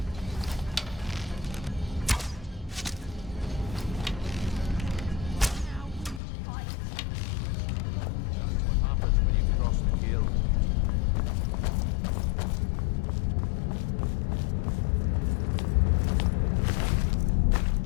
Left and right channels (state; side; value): drops out; right; at 6.2 s